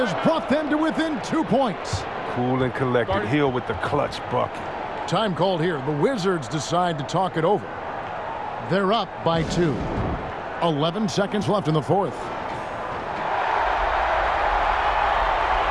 brought them to within 2 points. Cool and collected. Hill with the clutch bucket. Time called here. The Wizards decide to talk it over. They're up by 2. 11 seconds left in the fourth.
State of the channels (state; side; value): identical; both; correlation 1.00